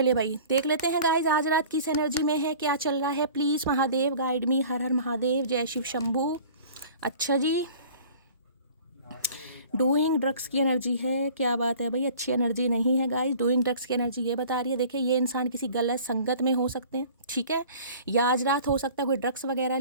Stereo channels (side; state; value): both; inverted; correlation -0.46